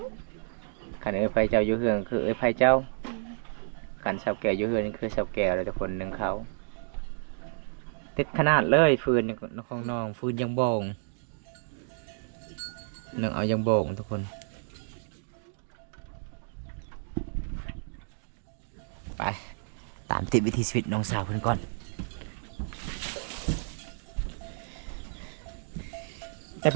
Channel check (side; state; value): left; silent; digital silence